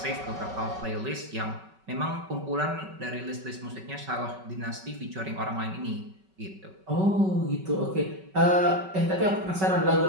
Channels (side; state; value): left; late; 5.3 ms